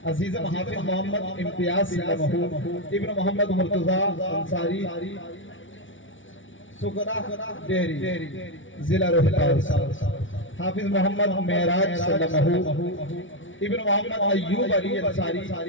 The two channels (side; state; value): right; late; 0.56 ms